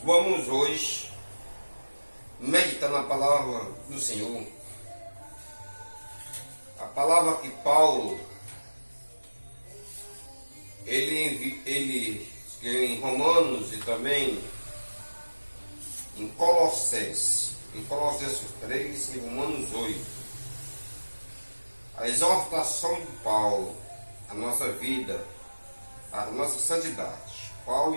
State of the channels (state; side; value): inverted; both; correlation -1.00